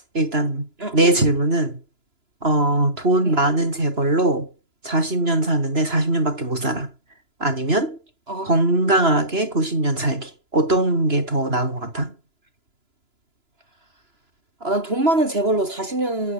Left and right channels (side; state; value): left; late; 2.9 ms